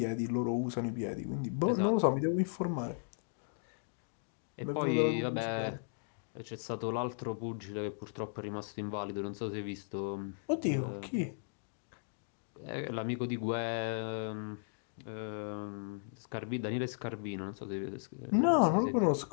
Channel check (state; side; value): silent; right; digital silence